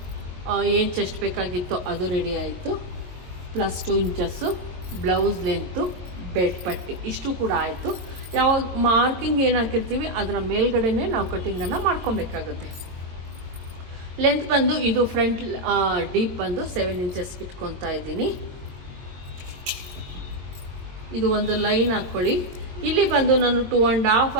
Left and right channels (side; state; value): left; late; 22 ms